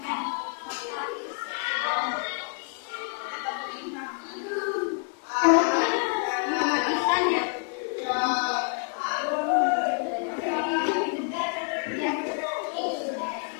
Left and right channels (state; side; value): quieter; right; 36.6 dB